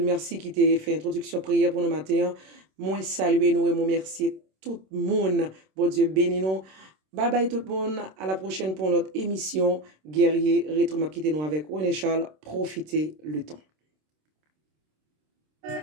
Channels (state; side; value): late; left; 26 ms